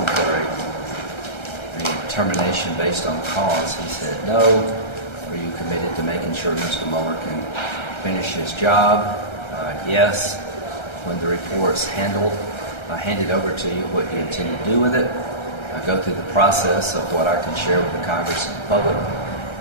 for a termination based on cause? He said no. Are you committed to making sure Mr. Mueller can finish his job? Yes. When the report's handed over to you, what do you intend to do with it? I go through the process of what I can share with the Congress and the public,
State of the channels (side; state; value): right; late; 1.3 ms